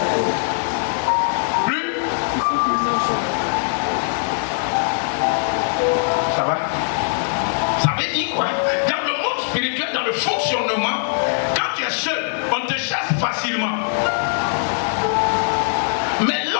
Plus? Ça va? Ça veut dire quoi? Dans le monde spirituel, dans le fonctionnement, quand tu es seul, on te chasse facilement. Mais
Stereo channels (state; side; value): silent; right; digital silence